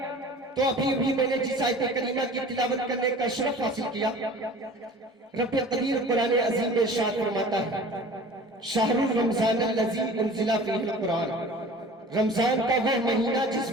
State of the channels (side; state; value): both; normal; correlation 0.43